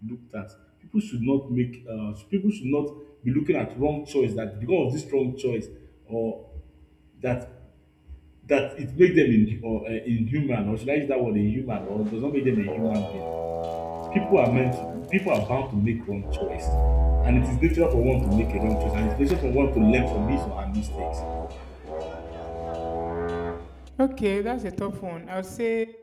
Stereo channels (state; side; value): identical; both; correlation 1.00